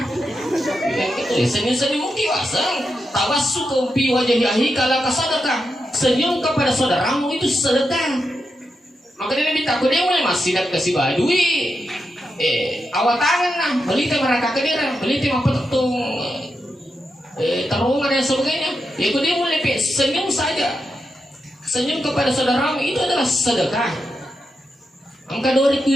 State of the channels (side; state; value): both; normal; correlation 0.86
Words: Yang itu senyum-senyum kiwasang, tawasu kumpi wajah yahi kala kasadakah. Senyum kepada saudaramu itu sedekah. Maka dia minta aku dia mulai masih dak kasih badui. Awak tangan nah, beli teh mereka kedira, beli teh apa tung terowongan dan sebagainya. Ya dia mulai senyum saja, senyum kepada saudaramu itu adalah sedekah. Angka 2